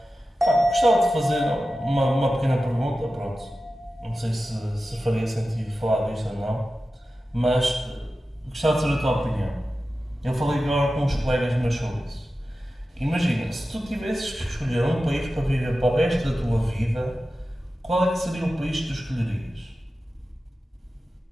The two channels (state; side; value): normal; both; correlation 0.94